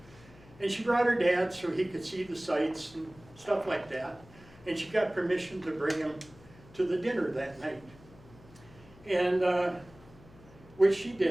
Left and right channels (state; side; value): noise; left; hum, 23 dB below the sound